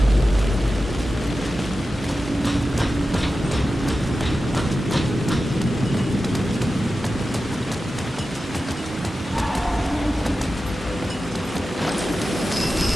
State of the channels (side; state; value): both; normal; correlation 0.93